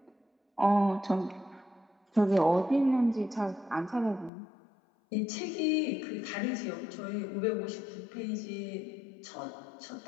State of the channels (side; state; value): right; drops out; at 4.3 s